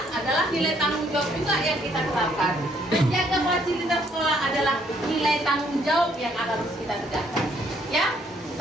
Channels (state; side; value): normal; both; correlation 0.67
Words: adalah nilai tanggung jawab juga yang kita terapkan. Menjaga fasilitas sekolah adalah nilai tanggung jawab yang harus kita tegakkan. Ya,